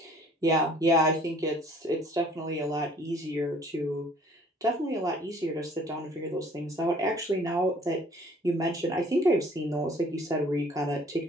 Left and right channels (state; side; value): normal; both; correlation 0.54